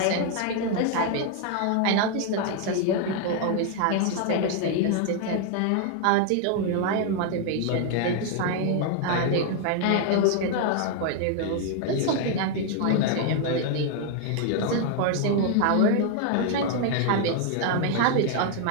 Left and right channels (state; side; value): different; both; correlation 0.00